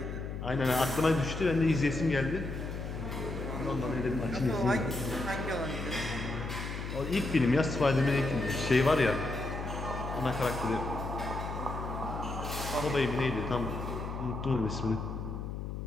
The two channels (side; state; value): left; noise; hum, 6 dB below the sound